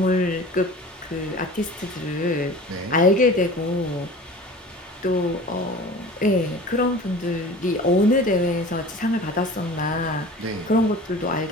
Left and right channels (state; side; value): normal; both; correlation 0.40